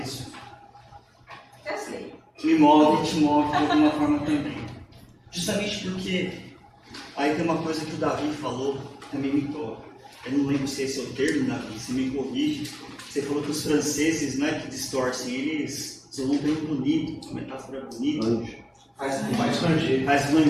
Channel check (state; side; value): identical; both; correlation 1.00